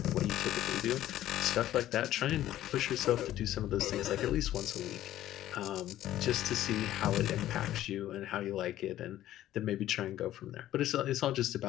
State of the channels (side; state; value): right; quieter; 13.3 dB